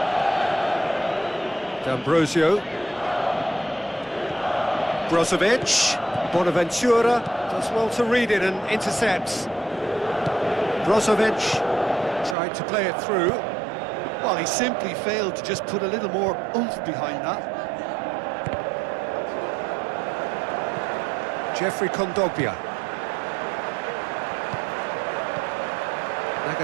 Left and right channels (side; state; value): left; drops out; at 12.4 s